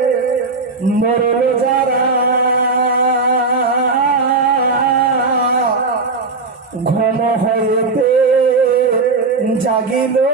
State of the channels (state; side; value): quieter; left; 3.9 dB